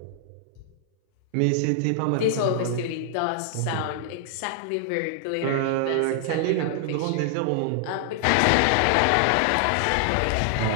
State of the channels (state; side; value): different; both; correlation -0.01